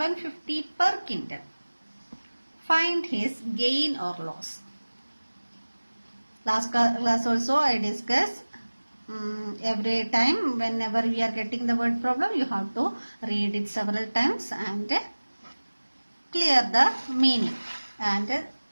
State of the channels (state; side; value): inverted; both; correlation -1.00